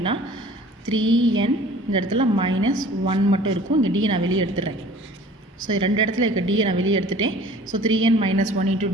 3n இந்த இடத்துல மைனஸ் 1 மட்டும் இருக்கும். இங்கே டியை நான் வெளியே எடுத்துடுறேன். ஸோ ரெண்டு இடத்துல இருக்க டியை நான் வெளியே எடுத்துட்டேன். ஸோ 3n மைனஸ் 1 இன்ட்டு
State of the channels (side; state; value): both; normal; correlation 0.48